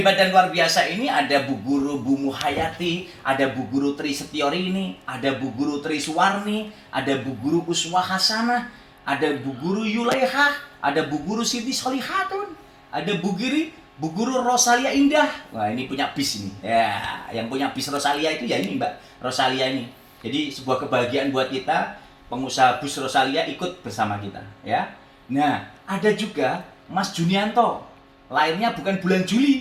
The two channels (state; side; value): identical; both; correlation 1.00